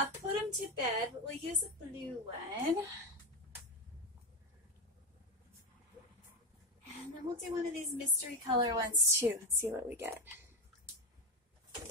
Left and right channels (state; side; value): normal; both; correlation 0.15